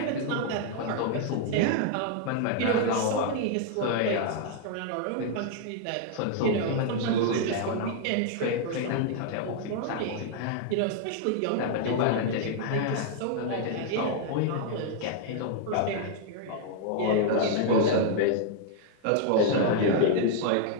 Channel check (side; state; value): both; different; correlation 0.00